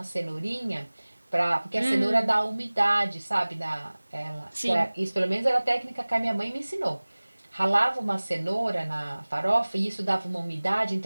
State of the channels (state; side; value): inverted; both; correlation -1.00